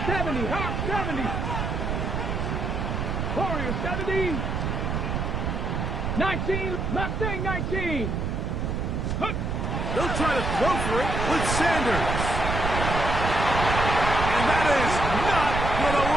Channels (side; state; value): right; noise; rumble, 1 dB below the sound